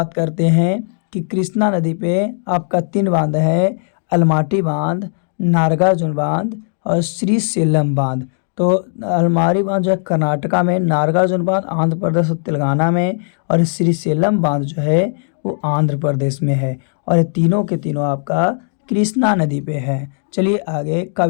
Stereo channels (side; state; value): right; silent; digital silence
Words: करते हैं कि कृष्णा नदी पे आपका 3 बांध है, अलमाटी बांध, नागार्जुन बांध और श्रीशैलम बांध। तो अलमारी बांध जो है कर्नाटका में, नागार्जुन बांध आंध्र प्रदेश और तेलंगाना में, और श्रीशैलम बांध जो है वो आंध्र प्रदेश में है। और तीनों के तीनों आपका कृष्णा नदी पे है। चलिए आगे